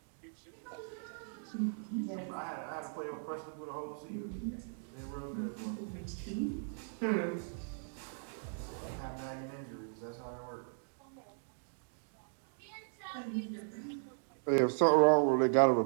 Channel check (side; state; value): left; silent; digital silence